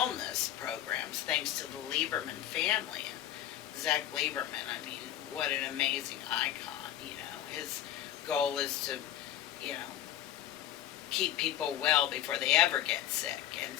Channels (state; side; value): quieter; right; 11.9 dB